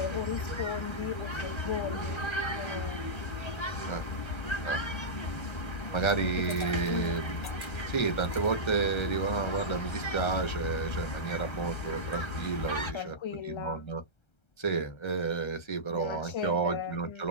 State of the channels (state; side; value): late; right; 1.3 ms